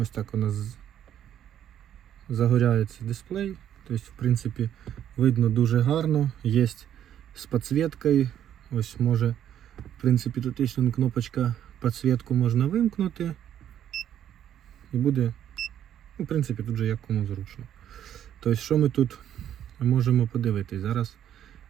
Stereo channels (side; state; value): left; quieter; 10.4 dB